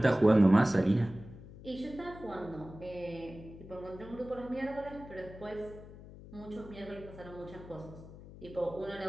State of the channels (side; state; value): left; noise; hum, 16 dB below the sound